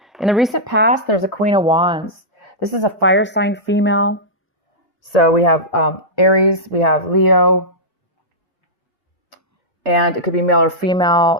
In the recent past, there's a Queen of Wands. This is a fire sign female. So we have Aries, we have Leo, and it could be male or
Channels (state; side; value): normal; both; correlation -0.12